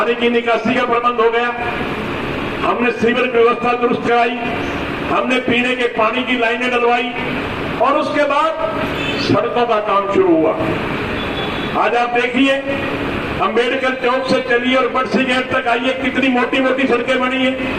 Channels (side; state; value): both; identical; correlation 1.00